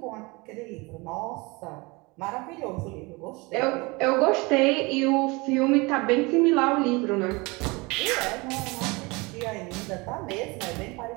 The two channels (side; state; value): left; quieter; 25.6 dB